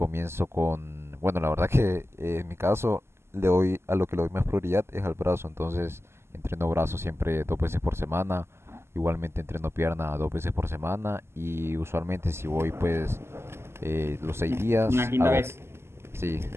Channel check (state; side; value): late; left; 0.12 ms